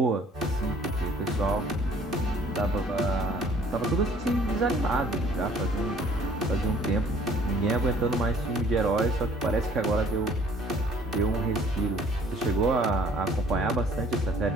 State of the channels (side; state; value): both; normal; correlation 0.56